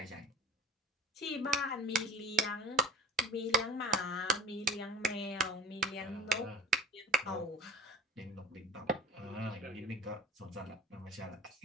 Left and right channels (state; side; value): normal; both; correlation 0.41